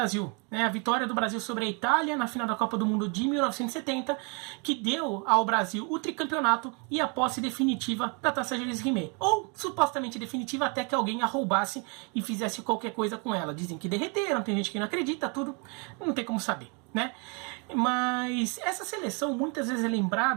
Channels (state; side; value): quieter; left; 33.1 dB